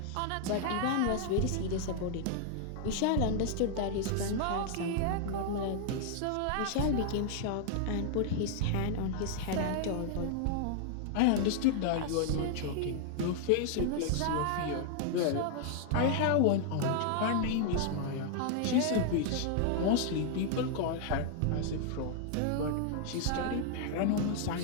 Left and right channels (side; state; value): both; different; correlation 0.00